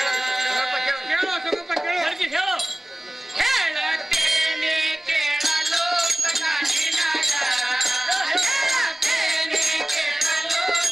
ಕೇಳೋ ಸ್ವಲ್ಪ ಕೇಳೋ ಹೇಳೋ ಹೇಳತ್ತೇನೆ ಕೇಳಲು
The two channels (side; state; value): both; normal; correlation 0.97